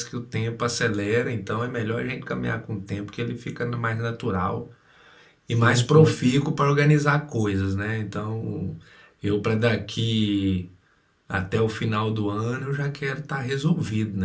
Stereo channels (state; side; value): identical; both; correlation 1.00